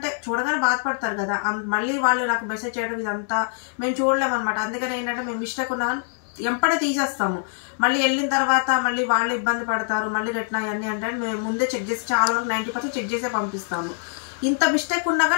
చూడగానే బాధపడతారు కదా. మళ్ళీ వాళ్ళు నాకు మెసేజ్ చేయడం ఇదంతా మేము చూడలేమన్నమాట. అందుకని ఏంటంటే మేము మిస్టేక్ ఉన్నా కానీ ఎంపడే తీసేస్తాము. మళ్ళీ వెళ్ళిన తర్వాత మళ్ళీ వాళ్ళు ఇబ్బంది పడతారు, మళ్ళీ రిటర్న్ అయ్యన్నీ అంటే మేము ముందే చెక్ చేసి చాలా వరకు 90% చెక్ చేసే పంపిస్తాము. ఇంత మిస్టేక్ ఉన్నా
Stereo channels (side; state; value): right; silent; digital silence